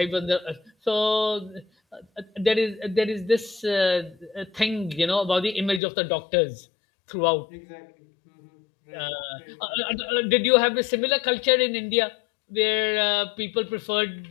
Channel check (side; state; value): right; drops out; at 5.8 s